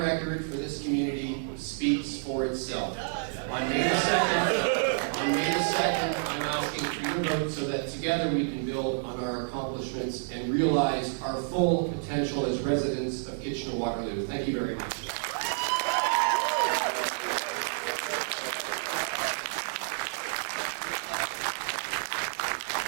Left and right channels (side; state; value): left; silent; digital silence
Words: for this community speaks for itself. On May the 2nd, I'm asking for your vote so that together we can build on our accomplishments and realize our full potential as residents of Kitchener-Waterloo. Thank you very much.